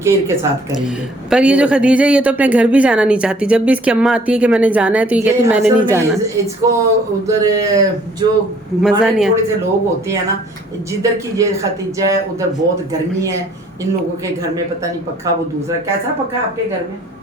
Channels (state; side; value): normal; both; correlation 0.59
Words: केयर के साथ करेंगे। पर ये जो खदीजा, ये तो अपने घर भी जाना नहीं चाहती। जब भी इसकी अम्मा आती है कि मैंने जाना है, तो ये कहती है मैंने असल नहीं में जाना। इसको उधर जो मजा नहीं थोड़े से लोग होते हैं ना, जिधर की ये खतीजा है उधर बहुत गर्मी है, इन लोगों के घर में पता नहीं पक्का, वो दूसरा कैसा पक्का आपके घर में?